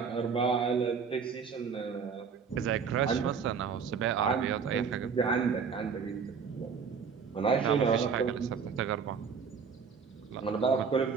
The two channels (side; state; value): left; quieter; 6.0 dB